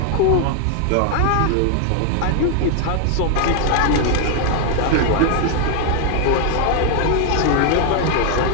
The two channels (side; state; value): both; different; correlation 0.00